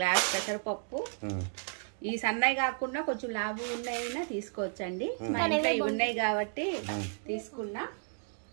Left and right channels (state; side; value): silent; left; 56 dB below the other